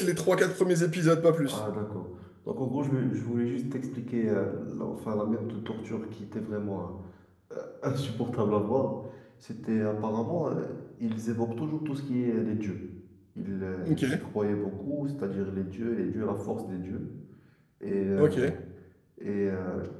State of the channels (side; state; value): both; identical; correlation 1.00